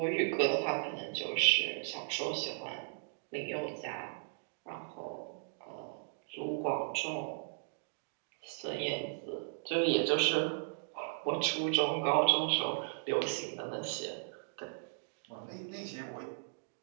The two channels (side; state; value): left; silent; digital silence